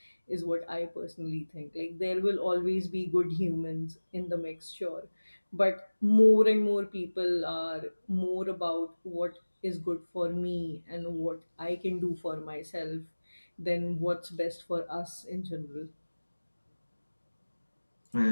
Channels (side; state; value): both; inverted; correlation -1.00